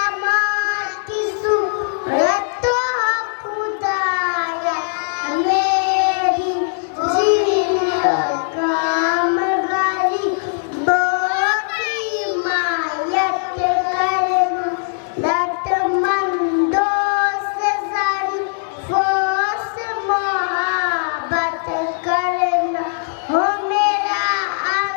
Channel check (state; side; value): silent; right; digital silence